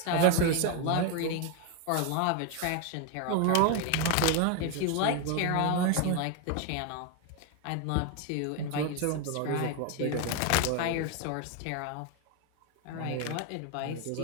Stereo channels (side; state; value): both; different; correlation 0.01